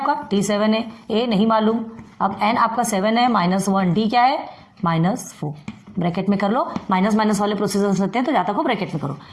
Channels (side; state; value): both; identical; correlation 1.00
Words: T7 है, A नहीं मालूम, अब n आपका 7 है, -1 D क्या है, -4, ब्रैकेट में कर लो, माइनस माइनस वाले प्रोसीजर होते हैं तो जहाँ तक हो ब्रैकेट में करो।